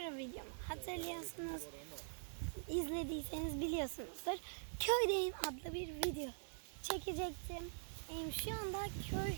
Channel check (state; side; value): silent; left; digital silence